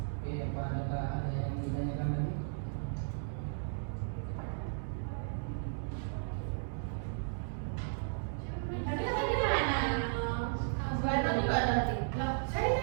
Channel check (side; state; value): left; silent; digital silence